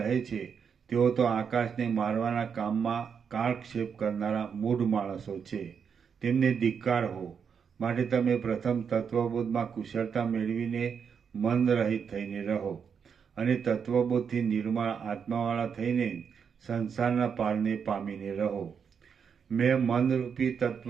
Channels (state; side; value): quieter; left; 6.8 dB